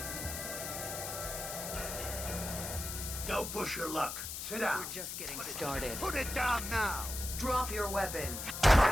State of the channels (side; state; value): left; noise; hiss, 6 dB below the sound